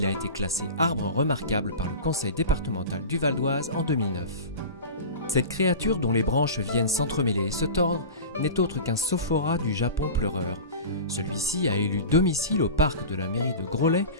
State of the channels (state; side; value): inverted; both; correlation -0.31